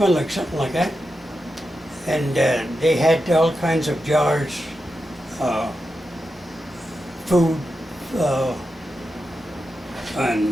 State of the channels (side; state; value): both; normal; correlation 0.89